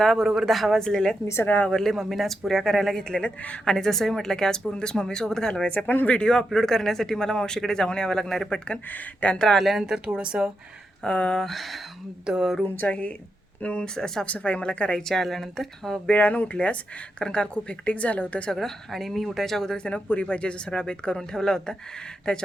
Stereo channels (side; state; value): both; normal; correlation 0.86